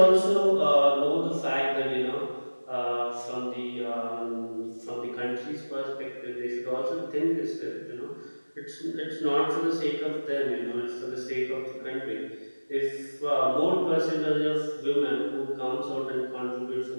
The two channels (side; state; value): both; inverted; correlation -1.00